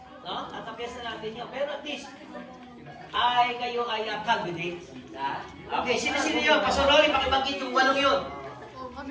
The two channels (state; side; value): identical; both; correlation 1.00